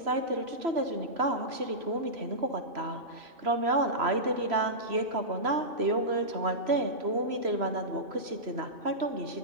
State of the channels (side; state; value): left; late; 3.0 ms